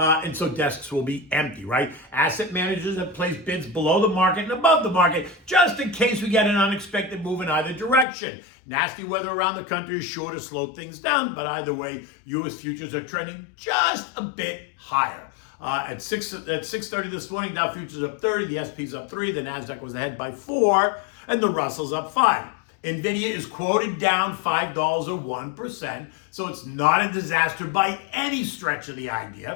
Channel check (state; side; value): drops out; right; at 8.1 s